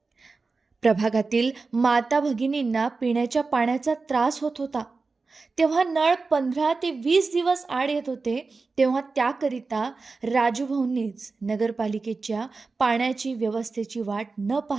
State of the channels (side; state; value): left; quieter; 4.1 dB